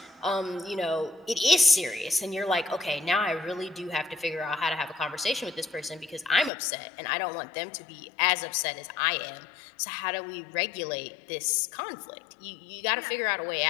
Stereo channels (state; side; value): drops out; right; at 6.5 s